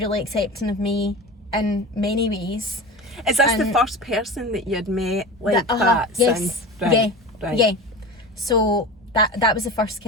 accepting of me in many ways. Is this the first person that you had met like that yes. since? Yeah. So that was the first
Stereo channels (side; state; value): both; normal; correlation 0.30